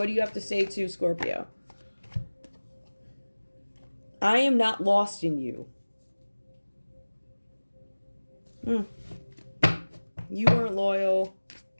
do you have to say to Scorpio? I am not lost in you. You weren't loyal.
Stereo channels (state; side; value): inverted; both; correlation -1.00